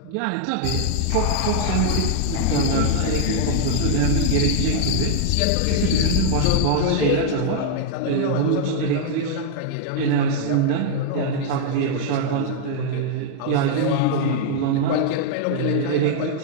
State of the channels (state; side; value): different; both; correlation -0.01